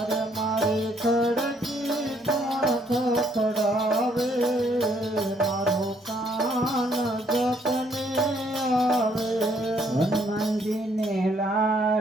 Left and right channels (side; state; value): both; normal; correlation 0.67